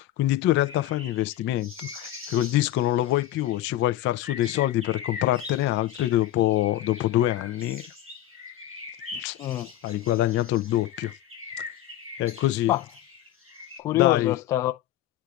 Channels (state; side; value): quieter; right; 13.5 dB